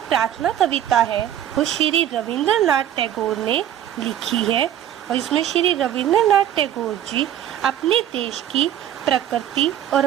कविता है वो श्री रविंद्रनाथ टैगोर ने लिखी है और इसमें श्री रविंद्रनाथ टैगोर जी अपने देश की प्रकृति और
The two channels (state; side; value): quieter; left; 11.1 dB